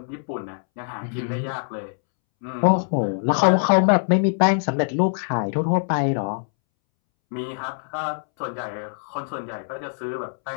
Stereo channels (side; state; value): right; silent; 63 dB below the other